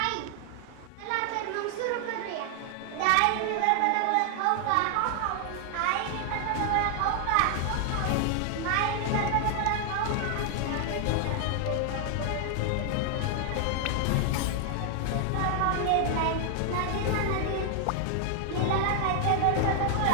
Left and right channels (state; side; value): different; both; correlation 0.00